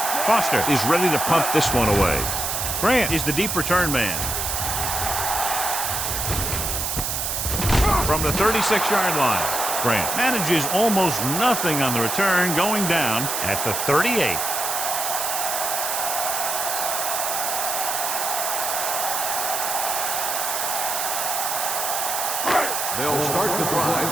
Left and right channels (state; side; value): noise; right; hiss, 1 dB below the sound